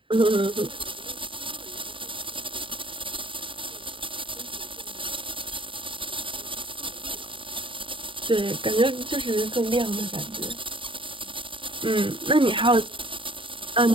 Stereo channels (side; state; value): left; late; 0.25 ms